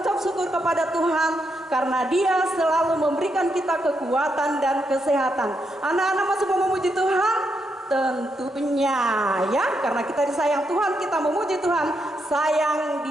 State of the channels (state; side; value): normal; both; correlation 0.81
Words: syukur kepada Tuhan karena Dia selalu memberikan kita kekuatan dan kesehatan. Anak-anak masih mau memuji Tuhan? Tentunya ya, karena kita disayang Tuhan, kita memuji Tuhan. Sayang